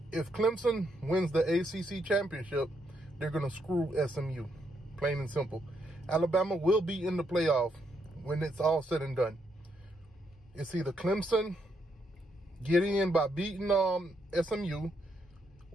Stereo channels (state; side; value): normal; both; correlation 0.77